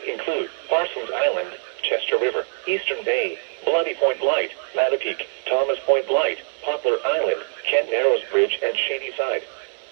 include Parsons Island, Chester River, Eastern Bay, Bloody Point Light, Mattapique, Thomas Point Light, Poplar Island, Kent Narrows Bridge, and Shady Side.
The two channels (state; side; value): silent; left; digital silence